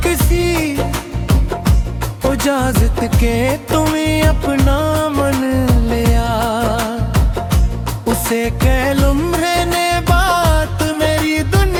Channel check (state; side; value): identical; both; correlation 1.00